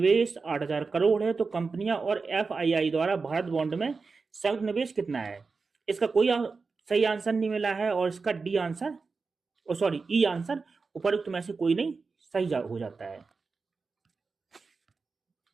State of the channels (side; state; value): left; quieter; 4.5 dB